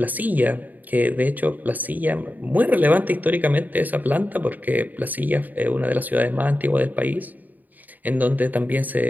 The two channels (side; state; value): left; late; 0.083 ms